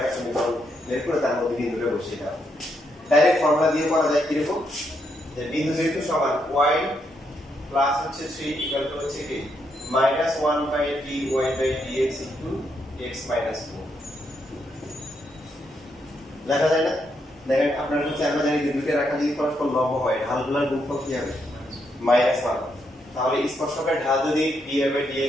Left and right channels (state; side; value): normal; both; correlation 0.78